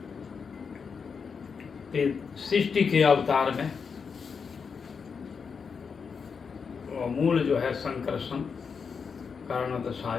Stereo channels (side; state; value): right; quieter; 5.8 dB